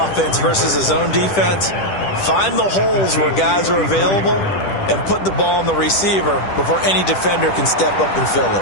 versus a zone defense, Find the holes where guys are available and put the ball on the receiver before any defender can step up and fill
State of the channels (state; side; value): late; right; 10 ms